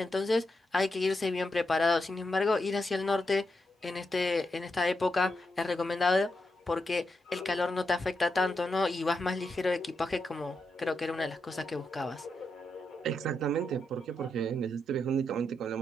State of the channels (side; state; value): both; normal; correlation 0.84